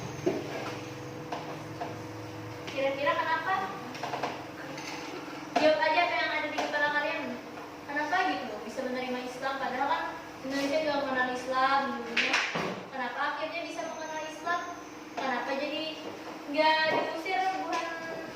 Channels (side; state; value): both; identical; correlation 1.00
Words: Kira-kira kenapa? Jawab aja apa yang ada di kepala kalian. Kenapa gitu bisa menerima Islam? Padahal kan Indonesia juga mengenal Islam dulunya. kenapa akhirnya bisa mengenal Islam? Kenapa jadi nggak diusir